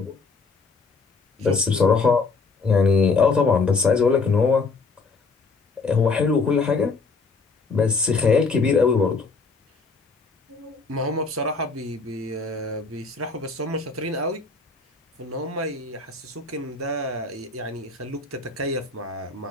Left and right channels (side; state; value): right; quieter; 4.3 dB